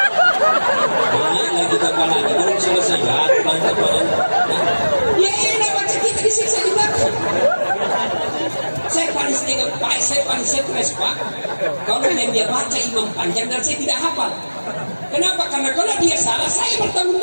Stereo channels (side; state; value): both; inverted; correlation -1.00